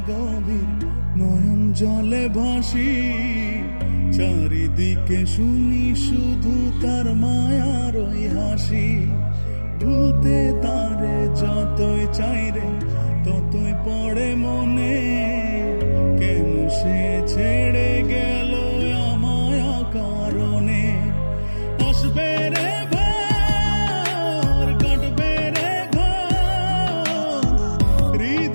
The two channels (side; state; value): both; inverted; correlation -1.00